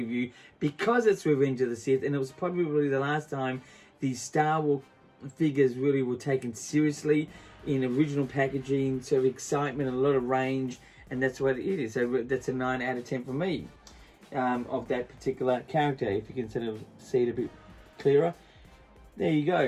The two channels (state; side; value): identical; both; correlation 1.00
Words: because it's Revenge of the Sith, and it was probably the last time these Star Wars figures really were taken seriously in original packaging, sort of excitement and a lot of range, and that's what it is. So that's a 9 out of 10 for me of that particular character. If you can sort of see it a bit clearer, there you